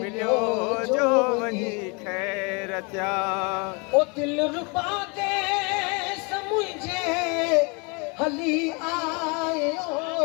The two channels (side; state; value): right; quieter; 31.4 dB